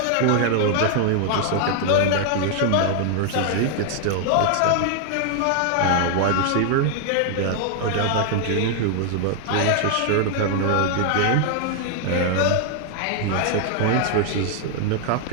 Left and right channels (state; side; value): different; both; correlation 0.00